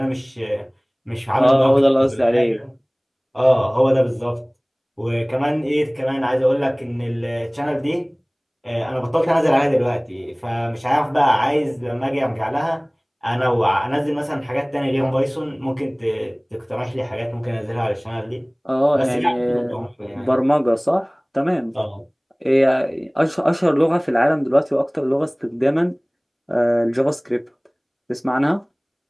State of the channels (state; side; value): identical; both; correlation 1.00